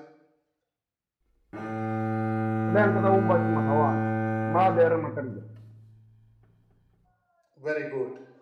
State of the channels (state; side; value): identical; both; correlation 1.00